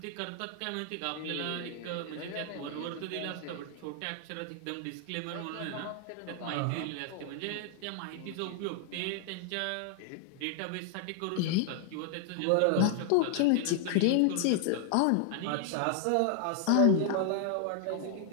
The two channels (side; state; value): both; different; correlation 0.00